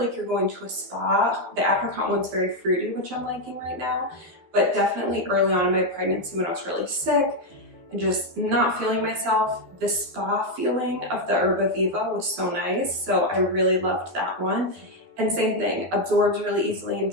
you're going to a spa, the apricot one's very fruity, which I'm liking right now, but definitely early on in my pregnancy when I was really sick and just not feeling myself, the spa feeling of the Erbaviva was so nice. So I really loved that one. And same thing, absorbs really easily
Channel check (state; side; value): late; left; 12 ms